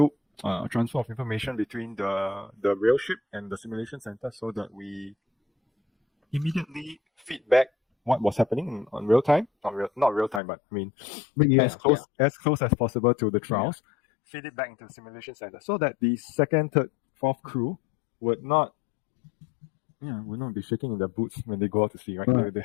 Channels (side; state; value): right; drops out; at 10.4 s